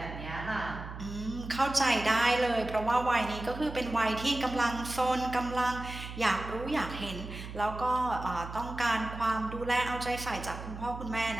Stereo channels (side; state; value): right; noise; hum, 10 dB below the sound